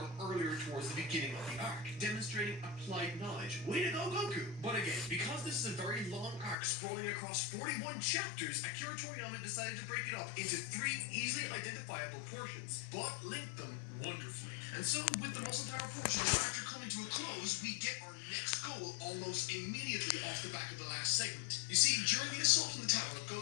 earlier towards the beginning of the arc, demonstrating applied knowledge. Way to go, Goku! But again, because this is a very long arc sprawling across 41 chapters, Akira Toriyama decided to break it up into 3 easily identifiable portions, but linked them wonderfully. And so, with the muscle power portion now after coming to a close, we get our next goal almost immediately off the back of the last segment. You see, during the assault on the tower,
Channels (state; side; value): drops out; right; at 6.6 s